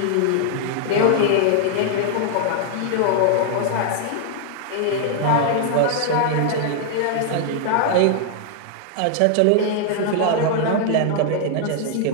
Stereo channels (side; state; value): both; different; correlation 0.00